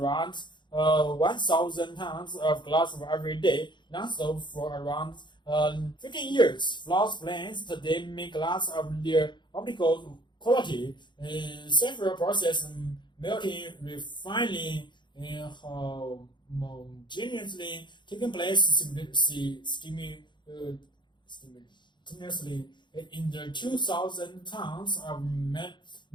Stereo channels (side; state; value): right; late; 0.22 ms